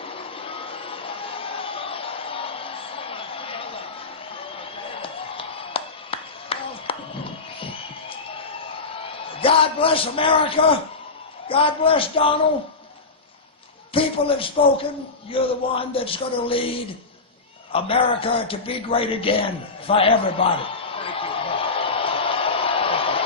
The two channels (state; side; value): quieter; right; 3.9 dB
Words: God bless America. God bless Donald. People have spoken. You're the one that's going to lead America to be great again for everybody.